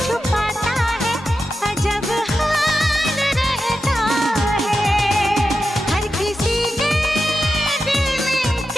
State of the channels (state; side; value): normal; both; correlation 0.90